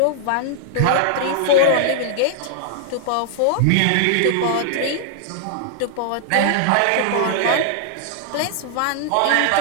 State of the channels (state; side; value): different; both; correlation -0.01